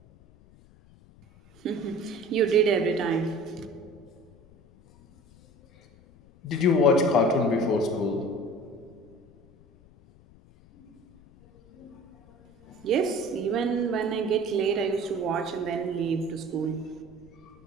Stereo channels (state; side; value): noise; left; rumble, 26 dB below the sound